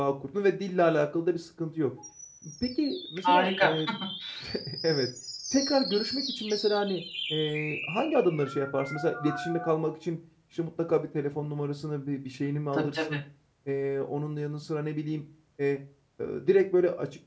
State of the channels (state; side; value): identical; both; correlation 1.00